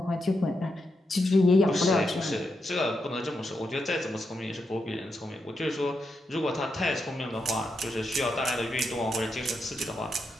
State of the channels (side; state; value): both; normal; correlation 0.84